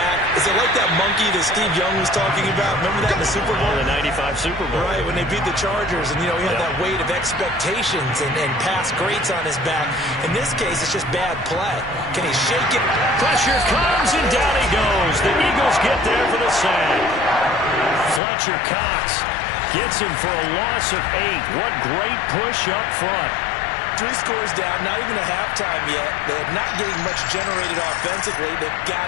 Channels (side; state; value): right; drops out; at 18.2 s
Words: Is it like that monkey that Steve Young was talking about? Remember that in the Super Bowl? The 95 Super Bowl. Right, when they beat the Chargers, and, you know, he had that weight of expectations and past greats on his back. In this case, it's just bad play. Can he shake it? Pressure comes, and down he goes. The Eagles get there for the sack. Fletcher Cox gets him for a loss of 8. What great push up front. 3 scores down, not even a halftime yet. They're not getting much generated offensively. They've